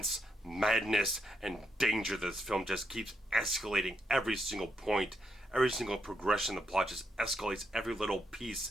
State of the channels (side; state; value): both; normal; correlation 0.80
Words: madness, and danger. This film just keeps escalating every single point. Every single progression of the plot just escalates every little